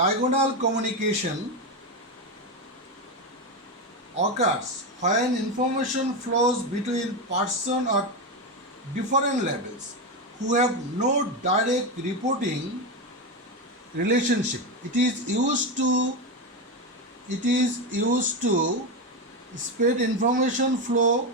communication occurs when information flows between person or different levels who have no direct reporting relationship. It is used to spread information flow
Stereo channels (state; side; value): normal; both; correlation 0.12